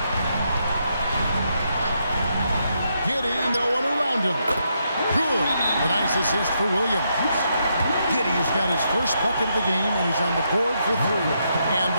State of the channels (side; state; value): both; inverted; correlation -0.79